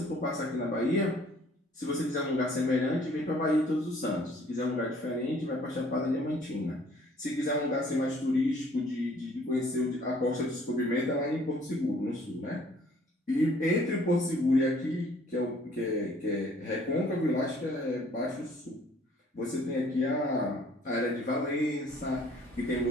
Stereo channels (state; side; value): normal; both; correlation 0.57